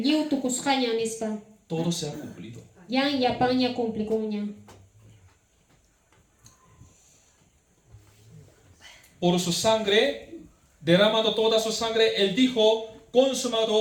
liu tukusqaña nispa. Todo se ha cumplido. Yan yapaña cumplikuña. Por su sangre, derramando toda su sangre, él dijo,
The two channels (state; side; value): identical; both; correlation 1.00